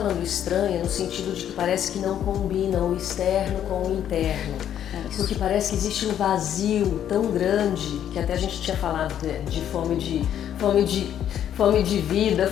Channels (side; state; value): right; quieter; 10.1 dB